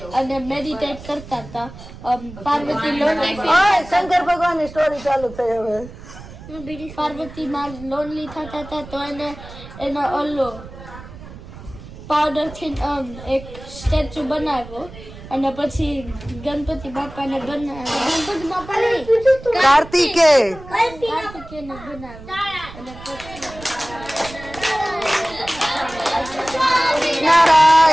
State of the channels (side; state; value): right; noise; rumble, 16 dB below the sound